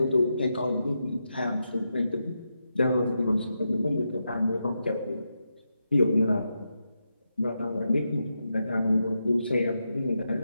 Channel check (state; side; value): inverted; both; correlation -0.86